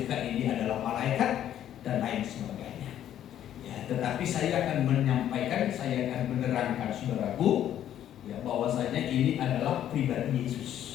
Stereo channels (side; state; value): right; quieter; 11.0 dB